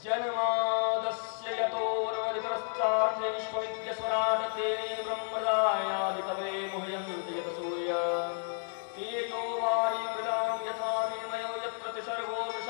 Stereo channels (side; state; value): right; silent; 57 dB below the other